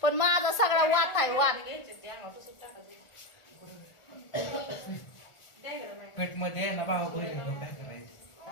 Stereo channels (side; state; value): right; late; 1.4 ms